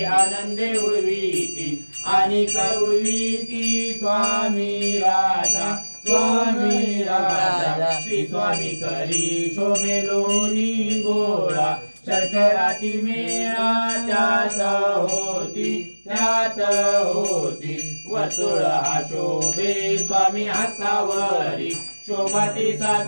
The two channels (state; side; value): inverted; both; correlation -1.00